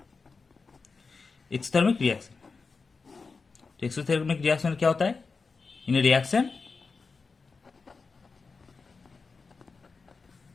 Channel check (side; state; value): right; quieter; 4.5 dB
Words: एक्सोथर्मिक रिएक्शन, तो एक्सोथर्मिक रिएक्शन में क्या होता है? In a reaction